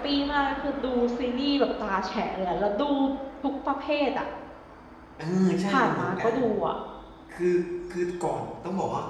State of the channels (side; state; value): both; identical; correlation 1.00